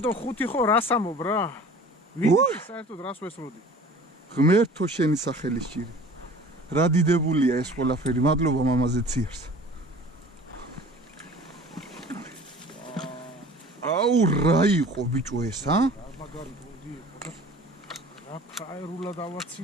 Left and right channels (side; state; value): both; normal; correlation 0.45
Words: და 5 ხო რას ამობ რა ვიცი საერთოდ რას ვესროდი ღმერთო შენი სახელის ჭირი რა დიდებულია ეს ყველაფერი მადლობა მამაზე ციარს აუ რა იყო ბიჭო ეს ა მაგარი გუნდი იყო და რა ფაერულა